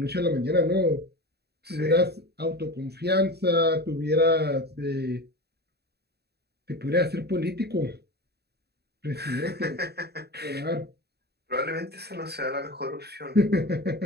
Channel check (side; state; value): left; late; 0.47 ms